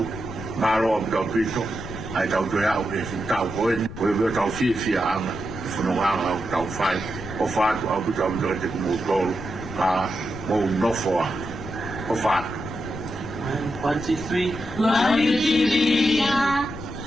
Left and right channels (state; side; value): noise; left; rumble, 11 dB below the sound